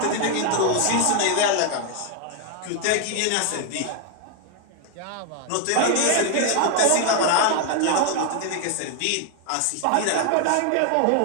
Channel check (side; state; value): both; different; correlation 0.00